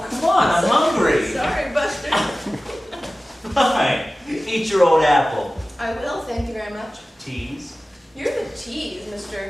come on, I'm hungry. Sorry, Buster. Fine. Eat your old apple. I will, thank you very much. Tease. You're the tease,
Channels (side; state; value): both; normal; correlation 0.96